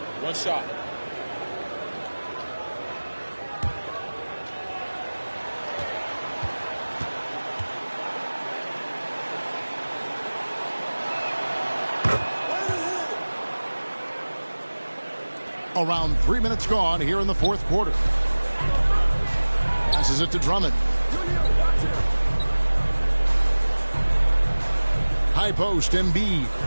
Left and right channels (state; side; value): inverted; both; correlation -1.00